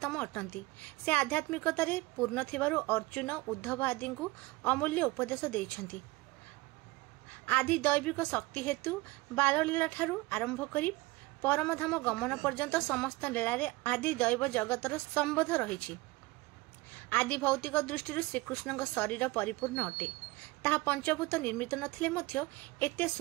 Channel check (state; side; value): quieter; left; 21.7 dB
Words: अटंती। से आध्यात्मिकतारे पूर्ण थिबारु अर्जुन उद्धव आदि को अमूल्य उपदेश देइछंती। आदि दैविक शक्ति हेतु बाललीला ठारू आरंभ करी परमधाम गमन पर्यंत समस्त लीलारे आदि दैव जगतर संबोध रही। आदि भौतिक दृष्टि श्रीकृष्ण शरीर परिपूर्ण अटे। ताहा पंचभूत निर्मित नथिले मध्य एते